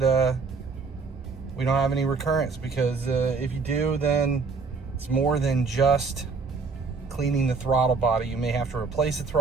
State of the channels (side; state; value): left; quieter; 4.7 dB